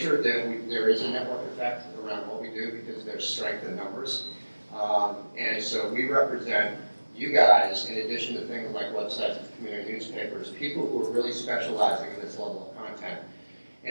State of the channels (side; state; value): both; inverted; correlation -1.00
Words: there is a network effect around what we do because there's strength in numbers. And so we represent you guys, in addition to things like websites and community newspapers, people who are really specializing in this level of content.